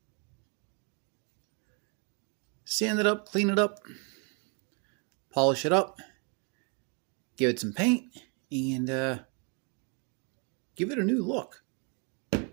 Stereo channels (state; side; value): quieter; left; 35.0 dB